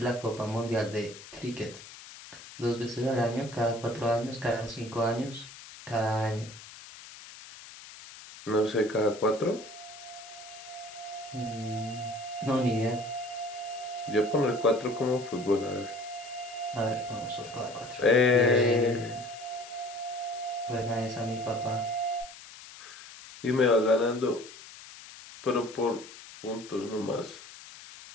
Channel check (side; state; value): left; noise; hiss, 16 dB below the sound